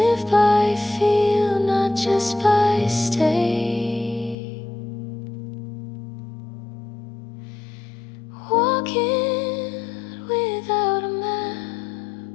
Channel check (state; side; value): drops out; right; at 4.4 s